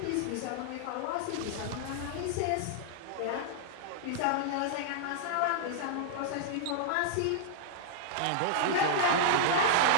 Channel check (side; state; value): both; different; correlation -0.01